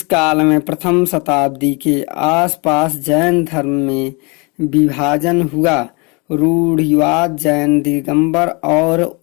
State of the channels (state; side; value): quieter; right; 29.8 dB